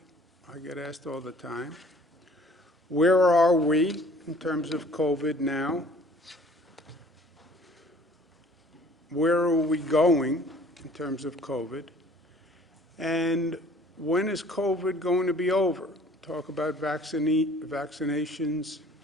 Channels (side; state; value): both; normal; correlation 0.53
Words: I get asked all the time. Where are we in terms of COVID now? Where are we going in terms of COVID? And when is COVID going to be over? Talk about vaccinations.